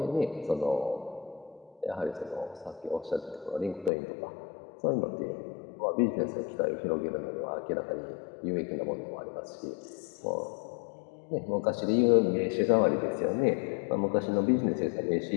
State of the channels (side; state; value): right; drops out; at 3.9 s